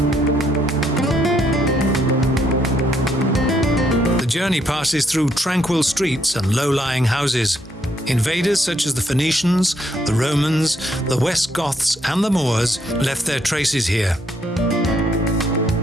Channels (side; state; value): both; normal; correlation 0.72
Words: The journey passes through tranquil streets and low-lying houses. Invaders such as the Phoenicians, the Romans, the West Goths and the Moors left their traces here.